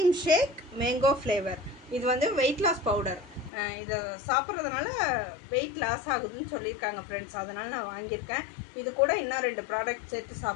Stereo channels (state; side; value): drops out; right; at 3.5 s